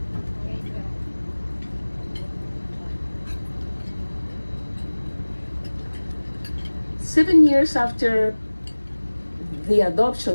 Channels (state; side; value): inverted; both; correlation -1.00